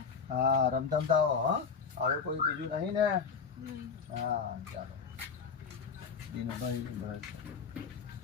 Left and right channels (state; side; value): quieter; right; 5.8 dB